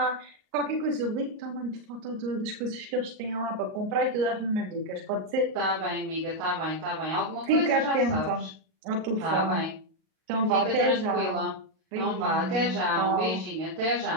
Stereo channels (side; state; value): left; late; 38 ms